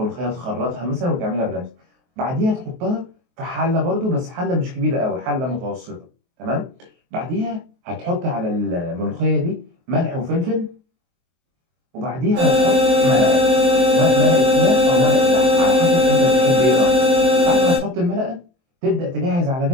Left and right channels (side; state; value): left; late; 23 ms